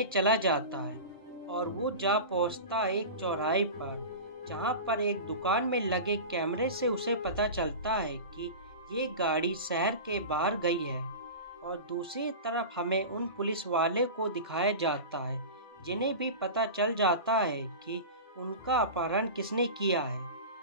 चला जाता है और वो जा पहुंचता है एक चौराहे पर, जहां पर एक दुकान में लगे कैमरे से उसे पता चलता है कि ये गाड़ी शहर के बाहर गई है। और दूसरी तरफ हमें उन पुलिस वाले को दिखाया जाता है जिन्हें भी पता चल जाता है कि उनका अपहरण किसने किया है।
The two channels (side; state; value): both; inverted; correlation -0.30